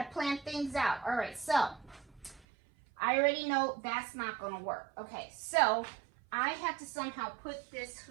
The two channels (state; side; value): drops out; left; at 2.4 s